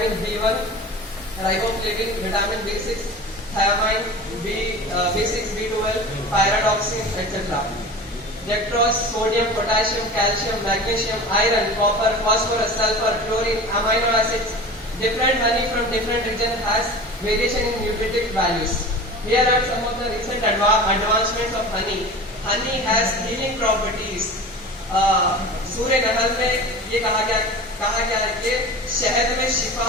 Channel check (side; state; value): both; normal; correlation 0.35